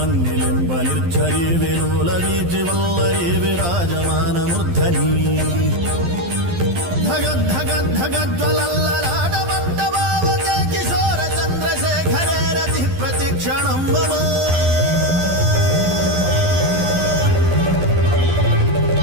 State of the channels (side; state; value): left; late; 12 ms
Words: निर्झरी विलोलवीचिवल्लरी विराजमानमूर्धनी धगद्धगद्धगज्ज्वलल्ललाटपट्टभावके किशोर चन्द्रशेखरे रतिः प्रतिक्षणं मम